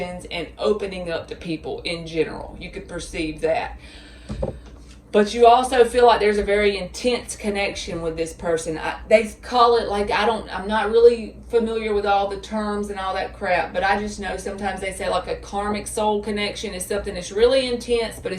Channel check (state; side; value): identical; both; correlation 1.00